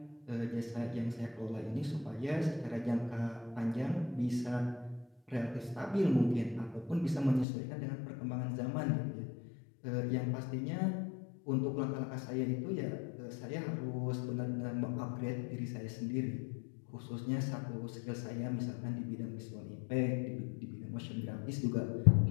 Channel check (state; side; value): drops out; right; at 7.5 s